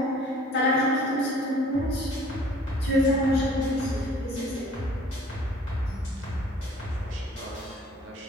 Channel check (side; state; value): both; normal; correlation 0.53